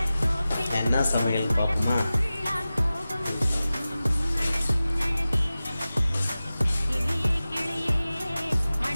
என்ன சமையல் பார்ப்போமா?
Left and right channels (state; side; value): inverted; both; correlation -0.95